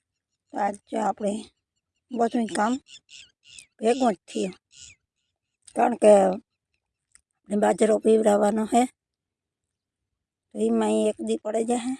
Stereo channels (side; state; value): both; identical; correlation 1.00